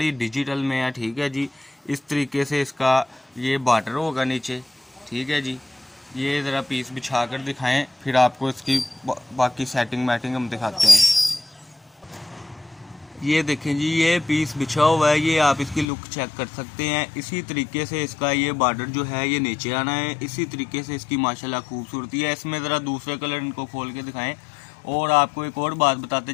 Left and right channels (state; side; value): drops out; right; at 15.9 s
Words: डिजिटल में है। ठीक है जी, इस तरीके से इसका ये बॉर्डर होगा नीचे। ठीक है जी, ये ज़रा पीस बिछा कर दिखाएं, फिर आपको इसकी बाकी सेटिंग मैटिंग हम दिखाते हैं। ये देखें जी, ये पीस बिछा हुआ है, ये आप इसकी लुक चेक कर सकते हैं। इसी तरीके से इसका ये बॉर्डर जो है ये नीचे आना है। इसी तरीके से इसकी माशाल्लाह खूबसूरती है। इसमें ज़रा दूसरे कलर इनको खोल के दिखाएं। और आपको एक और बात बताते